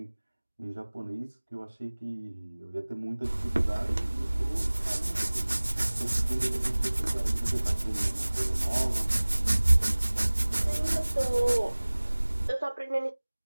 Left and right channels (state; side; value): inverted; both; correlation -1.00